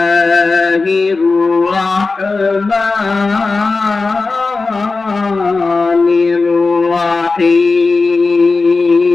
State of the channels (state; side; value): quieter; right; 3.9 dB